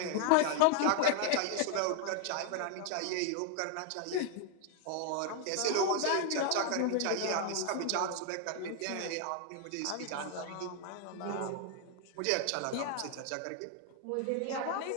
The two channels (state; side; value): different; both; correlation 0.00